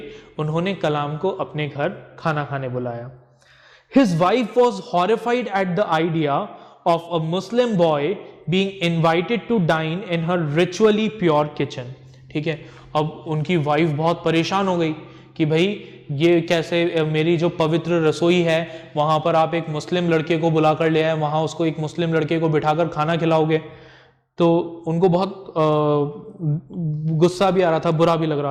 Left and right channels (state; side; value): identical; both; correlation 1.00